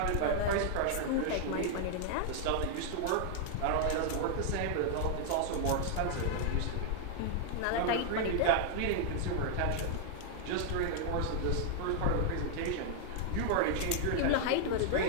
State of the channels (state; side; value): different; both; correlation 0.00